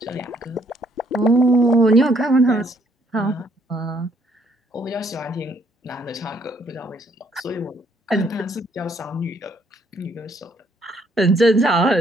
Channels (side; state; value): both; normal; correlation 0.68